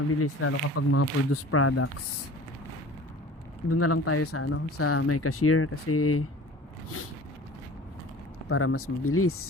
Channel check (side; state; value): both; normal; correlation 0.43